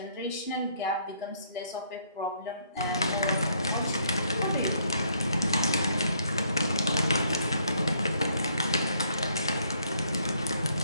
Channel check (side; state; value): both; inverted; correlation -0.68